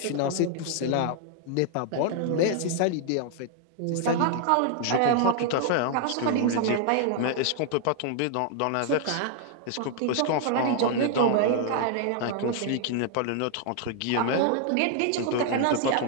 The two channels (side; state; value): both; different; correlation 0.00